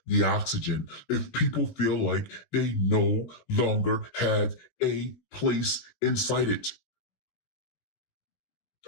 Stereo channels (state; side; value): late; right; 17 ms